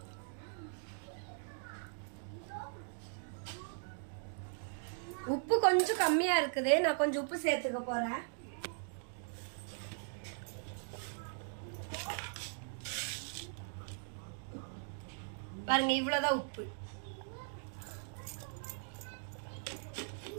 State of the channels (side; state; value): left; silent; digital silence